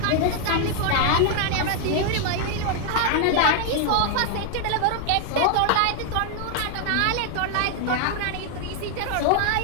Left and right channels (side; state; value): both; different; correlation 0.00